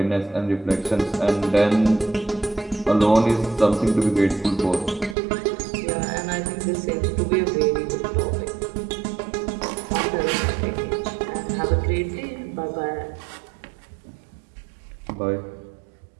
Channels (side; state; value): left; drops out; at 5.2 s